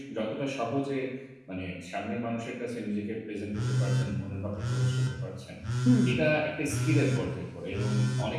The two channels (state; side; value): identical; both; correlation 1.00